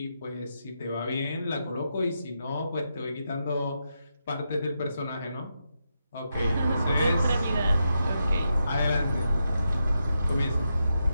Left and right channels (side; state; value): both; inverted; correlation -0.85